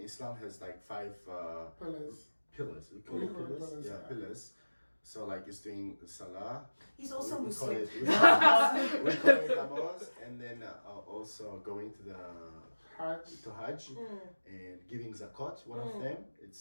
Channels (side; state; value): both; inverted; correlation -1.00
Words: has like 5 Pillars. pillars. We call it pillars. Yeah, pillars. So like it's doing salah. He's also we call Muslim. it we call it namaz, and then also going to the Hajj and giving zakat. One of them,